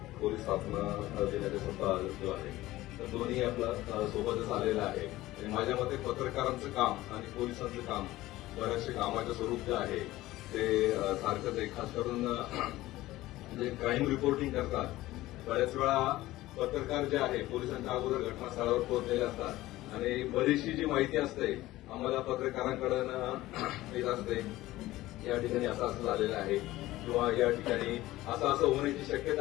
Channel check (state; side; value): quieter; right; 16.9 dB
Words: पोलीस स्थापना दिनाचा सप्ताह जो आहे, तर दोन्ही आपलं सोबतच आलेलं आहे. आणि माझ्या मते पत्रकारांचं काम आणि पोलिसांचं काम, बऱ्याचशा कामाचं स्वरूप जे आहे ते सारखंच आहे. खास करून जे क्राईम रिपोर्टिंग करतात, बऱ्याच वेळा पत्रकार जे आहे पोलिसांच्या अगोदर घटनास्थळावर पोहोचलेले असतात आणि बरीचशी जी माहिती असते आम्हाला पत्रकारांकडून येत असते. या ठिकाणी असं झालेलं आहे किंवा या ठिकाणी असं होण्याची